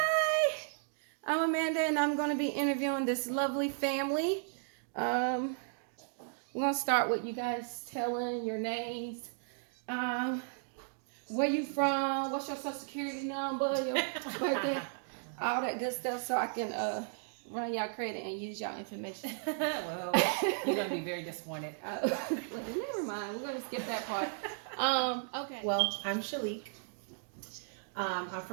I'm Amanda, and I'm going to be interviewing this lovely family. Um, we're going to start with you guys telling your names, um, where you from, what's your social security number, your birthday, all that good stuff, so I can run y'all credit and use y'all information. Well, you're gonna be very disappointed. Never mind, we're going to skip that part. Okay. Well, I'm Shalik. I'm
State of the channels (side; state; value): left; silent; digital silence